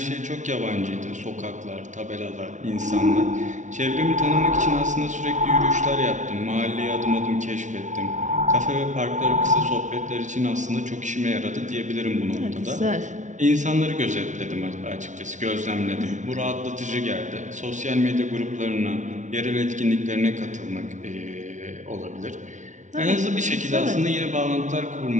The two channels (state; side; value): late; left; 0.36 ms